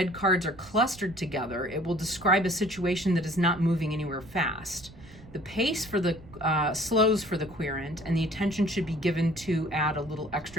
cards are clustered together, it will describe a situation that is not moving anywhere fast. The pace for the slows for the querent, and the attention should be given to add a little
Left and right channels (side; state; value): right; noise; rumble, 20 dB below the sound